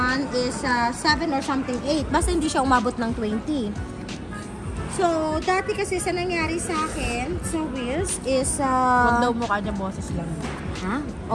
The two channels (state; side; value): identical; both; correlation 1.00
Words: is 7 or something 8. Basta hindi siya umabot ng 20. So, dati kasi sa nangyari sa akin, sa Wheels, is... Huwag daw mukha niya, boses lang. Ha?